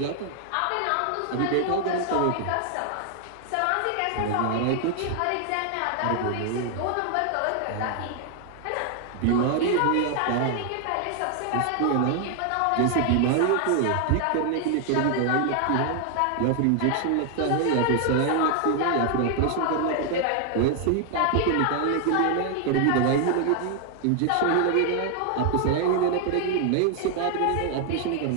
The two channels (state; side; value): different; both; correlation 0.00